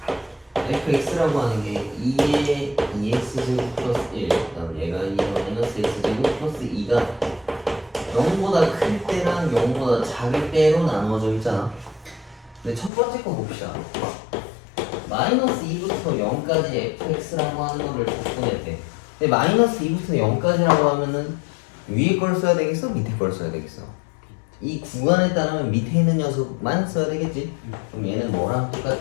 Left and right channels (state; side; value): drops out; right; at 12.9 s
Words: fx라고 하는 게 2의 2x제곱 플러스 1 그다음 얘가 2의 마이너스 x제곱 플러스 2가 0보다 클 때랑 0보다 작을 때로 나누어져 있잖아. 근데 첫 번째 거 봅시다. 마이너스 2부터 0까지 fx라고 하는 거를 적분했대. 근데 마이너스 2부터 0까지라고 하면은 위에 걸 써야 되겠어? 밑에 걸 써야 되겠어? 이 구간에 따르면 밑에 있는 녀석만 써야 되겠지? 그럼 얘는 뭐랑